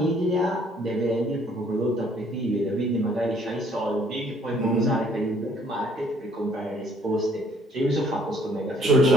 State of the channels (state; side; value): normal; both; correlation 0.62